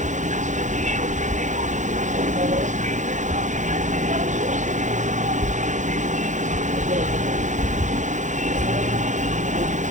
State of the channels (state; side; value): late; left; 0.35 ms